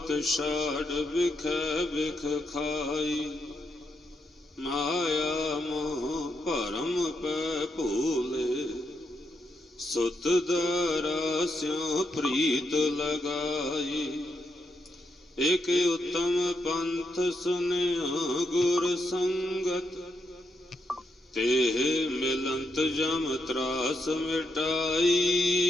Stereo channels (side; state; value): both; normal; correlation 0.81